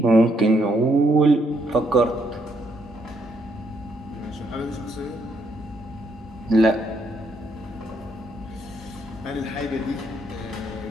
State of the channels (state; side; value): normal; both; correlation 0.74